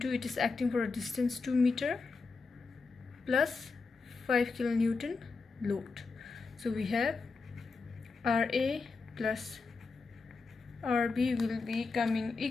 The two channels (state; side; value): quieter; right; 4.3 dB